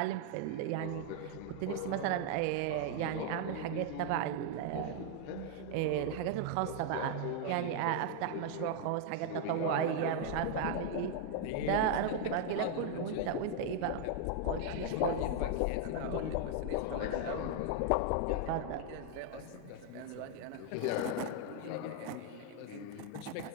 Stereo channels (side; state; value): both; different; correlation 0.00